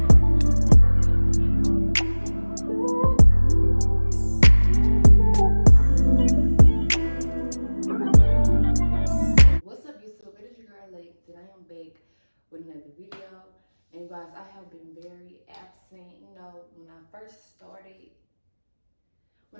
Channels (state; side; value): inverted; both; correlation -1.00